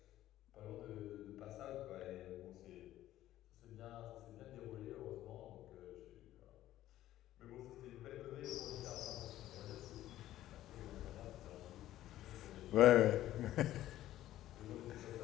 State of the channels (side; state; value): right; quieter; 13.8 dB